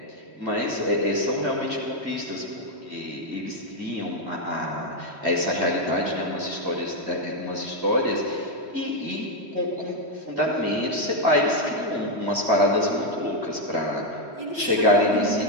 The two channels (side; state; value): left; late; 3.1 ms